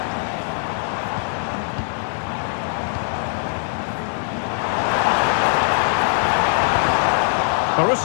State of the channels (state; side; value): silent; right; 65 dB below the other